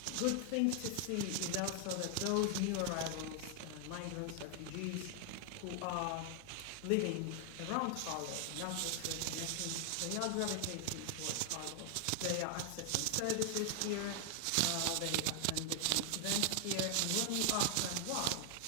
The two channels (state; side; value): different; both; correlation 0.00